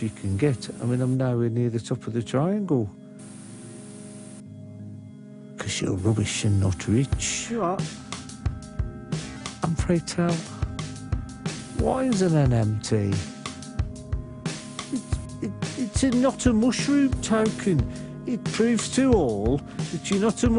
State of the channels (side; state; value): both; identical; correlation 1.00